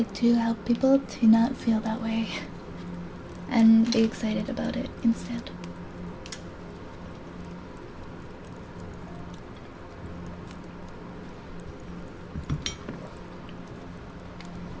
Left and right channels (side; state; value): both; identical; correlation 1.00